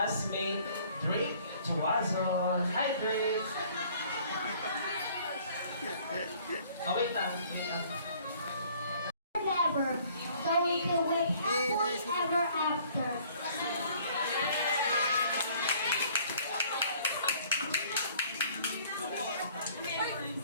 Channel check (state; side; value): inverted; both; correlation -0.57